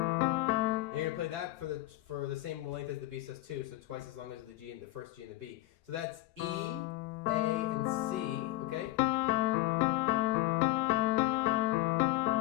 And you're going to play that for the same length as the B sus2, so twice as long as the G and the first G and the B. So that's E, A, and C, okay?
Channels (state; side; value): quieter; right; 17.1 dB